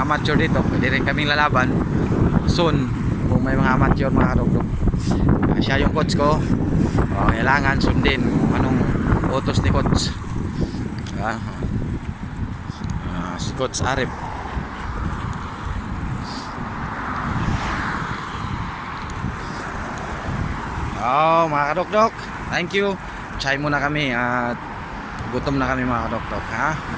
amateur dito, pwede rin kaming lalaban soon kung may mga amateur mga dok-dok. Siya yung coach ko. Kailangan sundin kung anong utos ni coach. Si Coach Arif. Mga kadok-dok, thank you. Chay muna kami at gutom na kami mga kadok-dok ha.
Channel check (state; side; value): identical; both; correlation 1.00